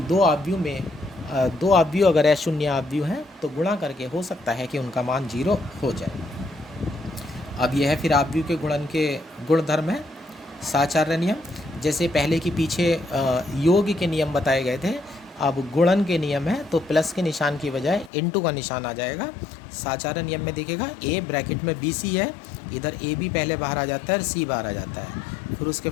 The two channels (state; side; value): drops out; right; at 18.1 s